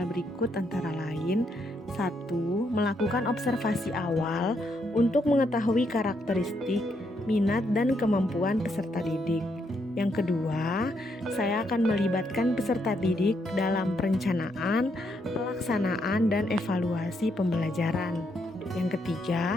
berikut antara lain. 1. Melakukan observasi awal untuk mengetahui karakteristik, minat, dan kemampuan peserta didik. Yang kedua, saya akan melibatkan peserta didik dalam perencanaan, pelaksanaan, dan evaluasi pembelajaran. Yang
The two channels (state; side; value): normal; both; correlation 0.77